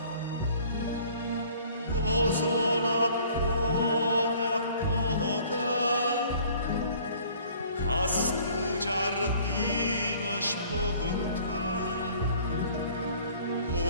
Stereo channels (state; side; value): inverted; both; correlation -0.53